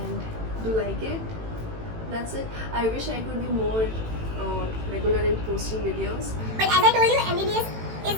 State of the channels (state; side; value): late; left; 18 ms